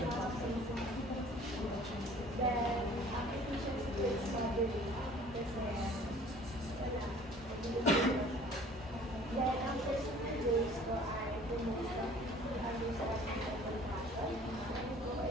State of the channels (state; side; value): normal; both; correlation 0.51